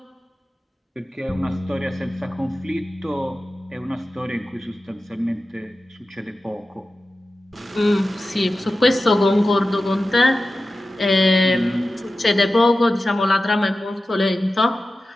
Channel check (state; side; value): normal; both; correlation 0.94